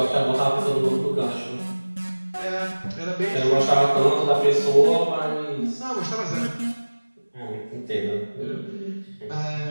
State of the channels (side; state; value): both; inverted; correlation -1.00